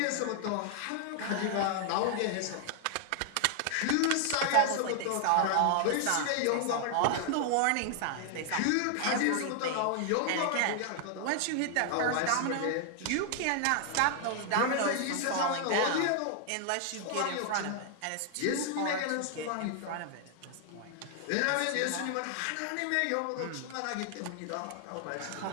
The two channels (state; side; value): different; both; correlation 0.00